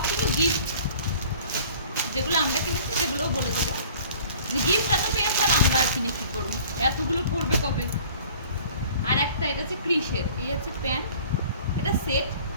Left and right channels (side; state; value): both; inverted; correlation -0.49